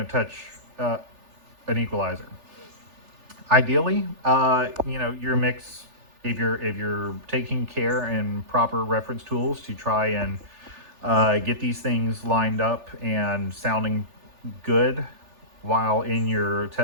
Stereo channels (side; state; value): left; late; 3.4 ms